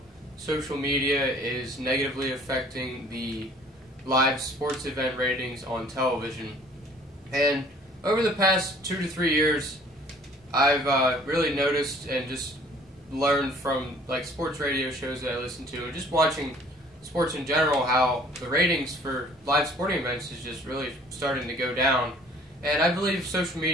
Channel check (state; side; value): normal; both; correlation 0.54